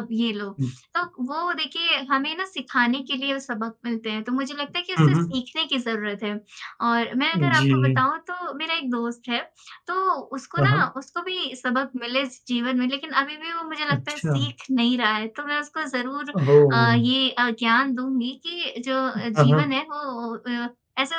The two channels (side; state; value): both; identical; correlation 1.00